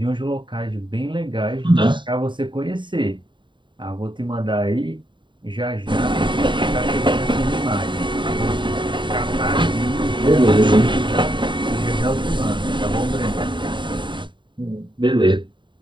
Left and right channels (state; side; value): late; left; 0.23 ms